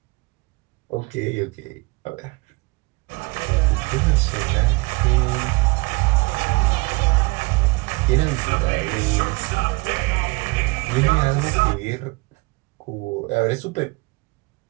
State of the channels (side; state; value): left; quieter; 26.5 dB